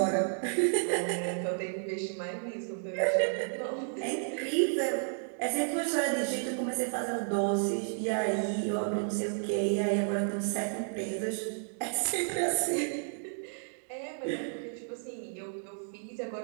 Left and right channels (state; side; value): silent; left; digital silence